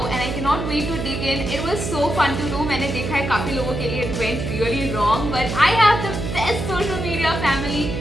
and I can not wait to dig in. It was so fun to do. मैंने देखा है काफ़ी लोगों के लिए it went really wrong, but I have the best social media family.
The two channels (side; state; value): right; noise; hum, 4 dB below the sound